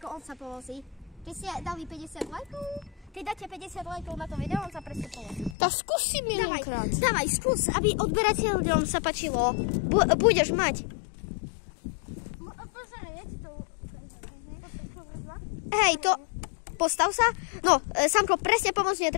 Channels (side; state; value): right; drops out; at 5.6 s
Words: on sa povozí? Keď ste dali 50 lajkov, keď dáte 50 lajkov na to video, on sa presne povozí. Tak skúsim jedenkrát. Dávaj, skús, aby odberateľom sa páčilo. Budeš mať. Hej, to... Postav sa. No, Samko, presne pomôcť